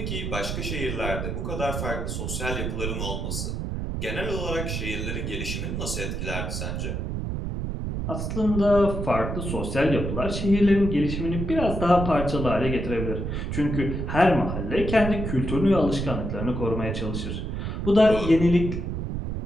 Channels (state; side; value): noise; right; rumble, 3 dB below the sound